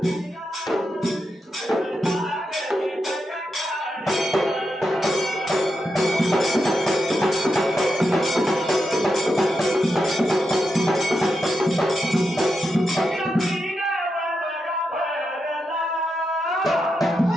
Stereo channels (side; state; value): both; normal; correlation 0.86